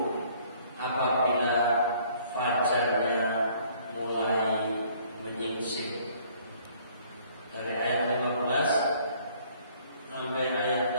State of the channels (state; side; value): inverted; both; correlation -0.59